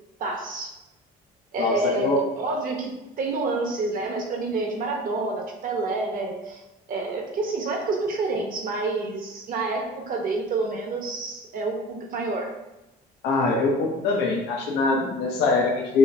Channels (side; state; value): both; normal; correlation 0.37